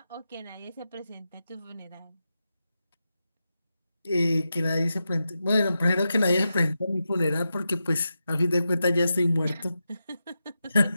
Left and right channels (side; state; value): both; inverted; correlation -0.90